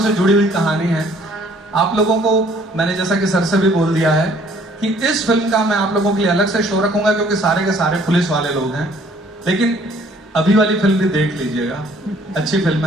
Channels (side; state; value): both; normal; correlation 0.59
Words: से जुड़ी हुई कहानी है। आप लोगों को मैंने जैसा कि सर से भी बोल दिया है कि इस फिल्म का मैं आप लोगों के लिए अलग से शो रखूंगा, क्योंकि सारे के सारे पुलिस वाले लोग हैं। लेकिन अभी वाली फिल्म भी देख लीजिएगा, अच्छी फिल्म